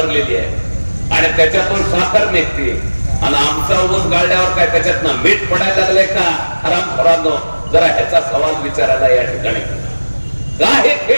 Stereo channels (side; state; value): both; inverted; correlation -1.00